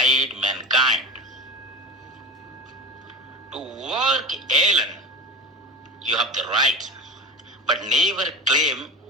mankind. To work alone, you have the right, but never claim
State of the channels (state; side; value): normal; both; correlation 0.31